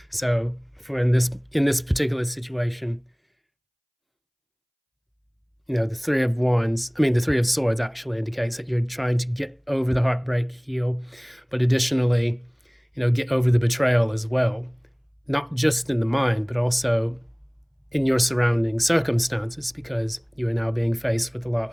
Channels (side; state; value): both; identical; correlation 1.00